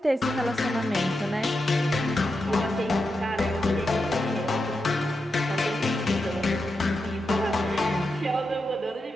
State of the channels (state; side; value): normal; both; correlation 0.87